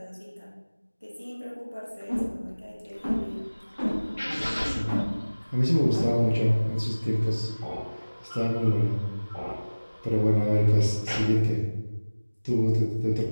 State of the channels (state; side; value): inverted; both; correlation -1.00